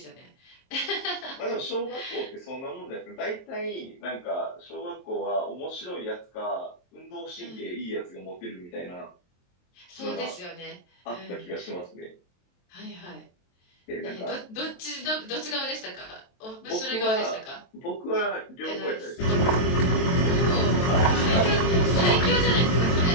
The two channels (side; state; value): right; late; 23 ms